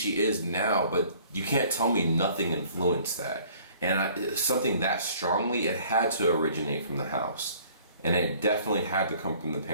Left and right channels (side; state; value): both; inverted; correlation -0.54